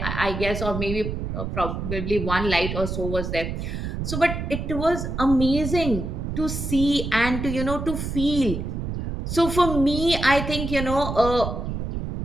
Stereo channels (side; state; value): right; noise; rumble, 4 dB below the sound